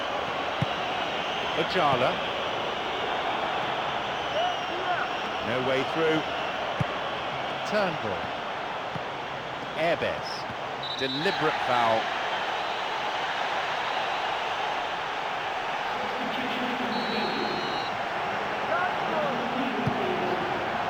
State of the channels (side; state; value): both; identical; correlation 1.00